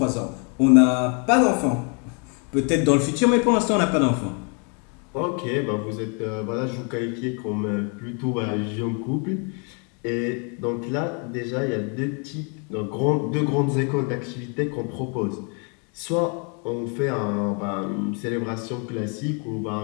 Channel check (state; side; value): quieter; right; 36.9 dB